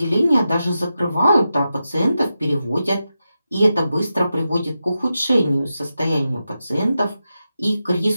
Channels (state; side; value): inverted; both; correlation -0.90